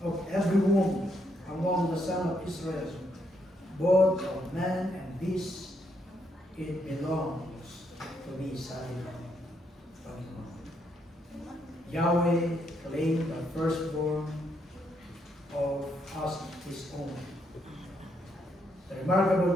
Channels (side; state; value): both; normal; correlation 0.76